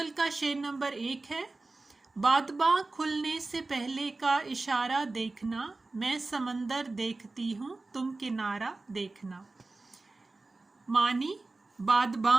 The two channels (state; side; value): quieter; left; 3.3 dB